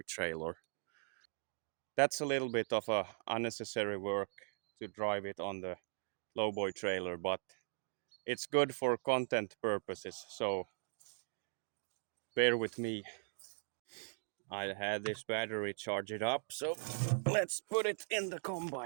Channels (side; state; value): left; silent; digital silence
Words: trailer. That's a little bit of a unnecessary work to drive it on the lowboy trailer, but it's good for content purposes. So bear with me. I had this battery charge it up, so let's put it in the